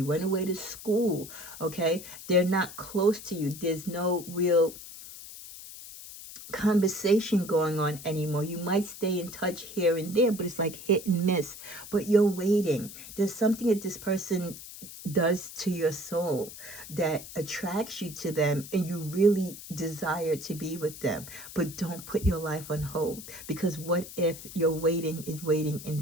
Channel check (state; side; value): noise; left; hiss, 14 dB below the sound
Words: went away to school, okay? They're not close to you. There's no real conversation going on anymore. You might stay in touch here and there, but it's like hit and miss. But you're waiting. There's something that this person does to your soul that attracts you to them, and you really desire to be with them. But don't put your life on hold, because what if your waiting is waiting